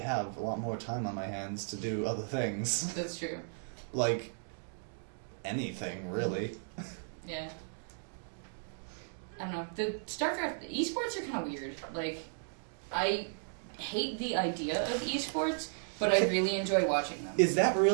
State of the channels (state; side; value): silent; left; digital silence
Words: have a lot more time on my hands to do other things. That's true. Like anything, really. Yeah. I don't know. The StarCraft esports are kind of weird. Like, I hate the idea of esports, but I really enjoy watching them. Is that